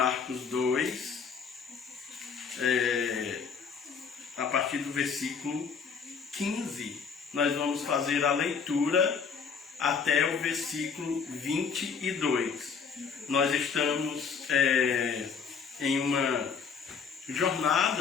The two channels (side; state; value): right; quieter; 6.0 dB